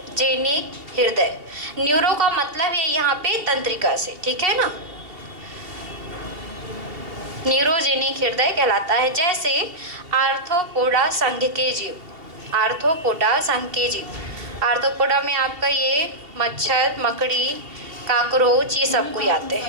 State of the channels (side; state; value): left; late; 2.8 ms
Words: हृदय, न्यूरो का मतलब है यहाँ पे तंत्रिका से, ठीक है ना, न्यूरोजेनिक हृदय कहलाता है। जैसे आर्थ्रोपोडा संघ के जीव, आर्थ्रोपोडा संघ के जीव, आर्थ्रोपोडा में आपका ये मच्छर, मकड़ी, काकरोच ये सब कोई आते